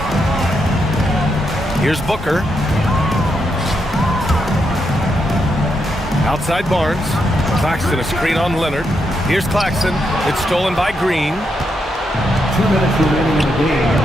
Here's Booker. Outside Barnes. Claxton a screen on Leonard. Here's Claxton. It's stolen by Green. 2 minutes remaining in the game.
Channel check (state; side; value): normal; both; correlation 0.81